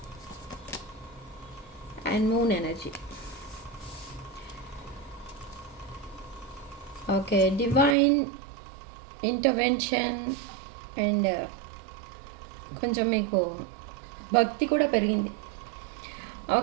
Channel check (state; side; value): drops out; left; at 8.0 s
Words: and moon energy. Okay, divine intervention and కొంచెం మీకు భక్తి కూడా పెరిగింది.